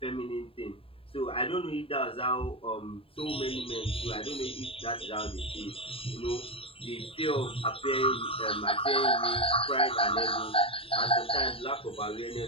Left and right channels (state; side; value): late; right; 0.27 ms